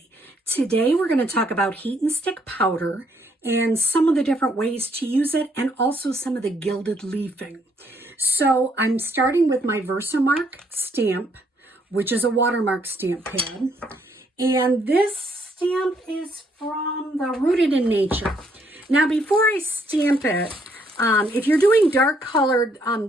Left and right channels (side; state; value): both; normal; correlation 0.70